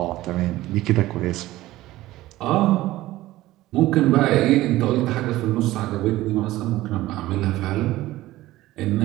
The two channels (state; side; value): quieter; left; 16.6 dB